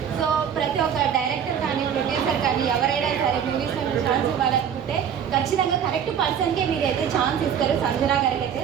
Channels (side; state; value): left; quieter; 8.3 dB